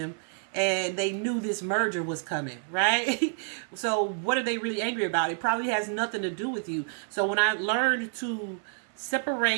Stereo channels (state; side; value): silent; left; 59 dB below the other